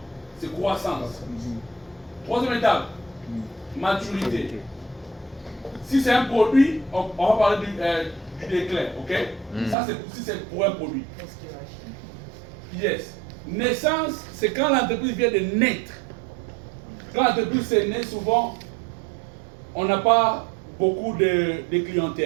C'est croissance. Troisième étape, maturité. Si c'est un produit, on va parler du déclin, ok? Ça, c'est si c'est pour un produit. Yes. Naissance, c'est quand l'entreprise vient de naître. Quand l'entreprise est née, souvent, on n'a pas beaucoup de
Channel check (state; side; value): drops out; left; at 9.8 s